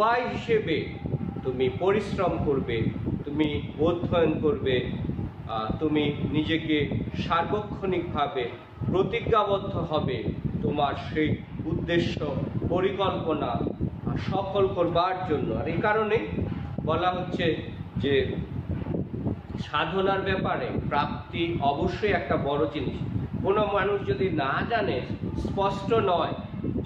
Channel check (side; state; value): both; identical; correlation 1.00